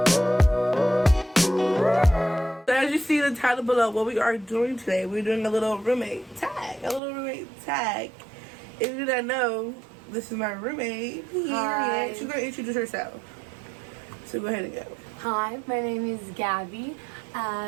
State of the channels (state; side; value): drops out; left; at 7.0 s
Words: So as you see the title below, what we are doing today, we're doing a little roommate tag. If you don't know, this is my roommate. Hi. She's gonna introduce herself. So go ahead and go. Hi, my name is Gabby.